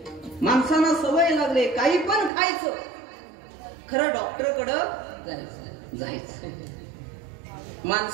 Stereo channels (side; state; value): left; drops out; at 2.3 s